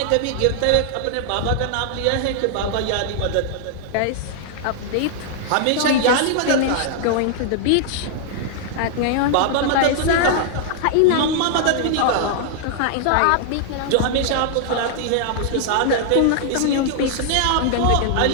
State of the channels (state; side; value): different; both; correlation 0.00